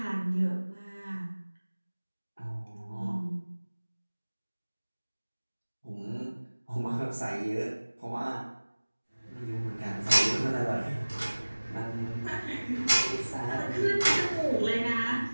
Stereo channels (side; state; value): both; inverted; correlation -1.00